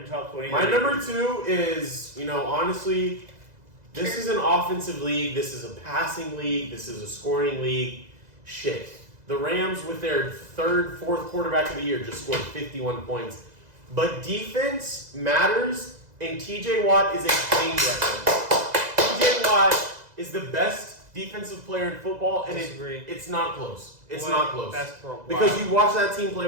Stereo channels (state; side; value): late; left; 2.0 ms